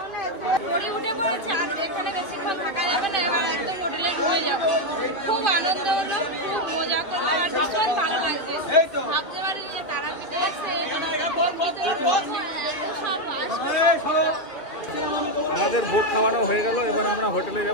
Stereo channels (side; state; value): right; late; 2.5 ms